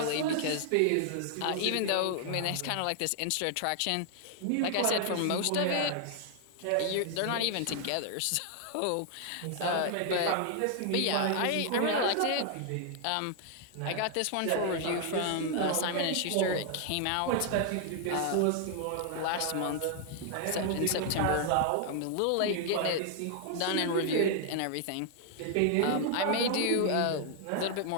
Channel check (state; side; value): different; both; correlation 0.00